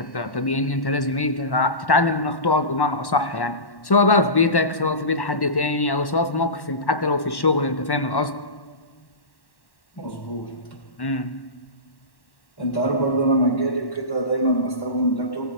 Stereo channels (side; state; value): right; late; 1.1 ms